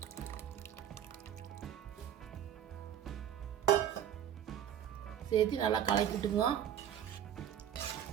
சேர்த்து நல்லா கலக்கிட்டுங்க.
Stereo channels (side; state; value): left; quieter; 10.0 dB